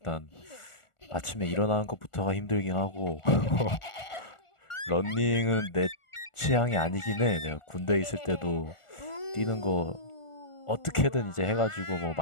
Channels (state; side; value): late; right; 1.4 ms